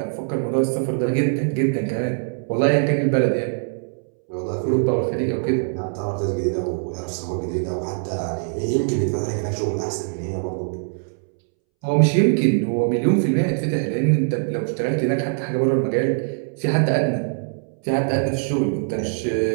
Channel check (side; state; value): left; silent; 64 dB below the other